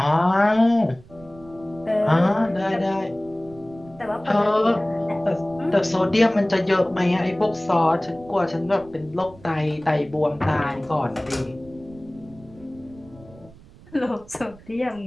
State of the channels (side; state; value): right; noise; rumble, 23 dB below the sound